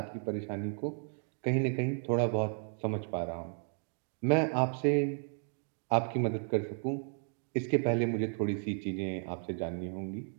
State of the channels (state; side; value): silent; left; 55 dB below the other